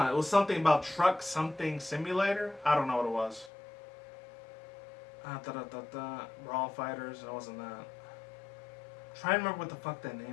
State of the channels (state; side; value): drops out; right; at 3.5 s